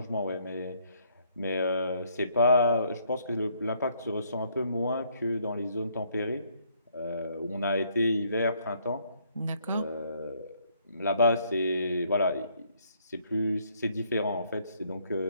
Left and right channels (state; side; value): inverted; both; correlation -0.68